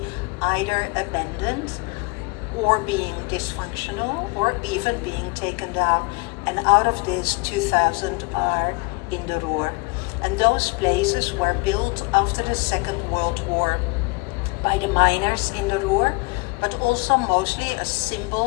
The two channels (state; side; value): quieter; right; 29.0 dB